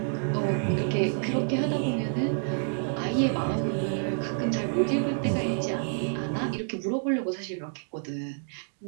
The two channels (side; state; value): left; silent; digital silence